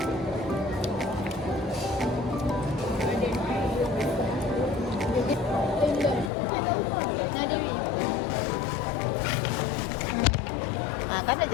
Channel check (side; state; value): right; drops out; at 6.3 s